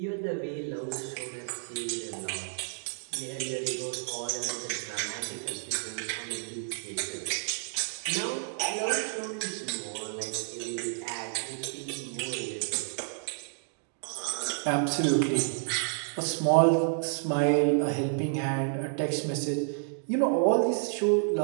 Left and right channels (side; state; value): left; silent; digital silence